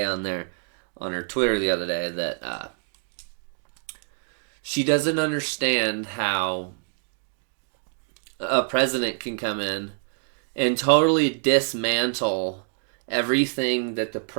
on her Twitter the other day that she doesn't understand how a president can come in and totally dismantle everything that the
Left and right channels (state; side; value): silent; left; 57 dB below the other